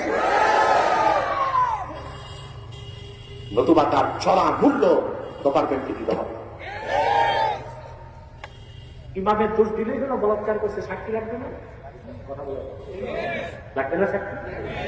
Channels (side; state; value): both; identical; correlation 1.00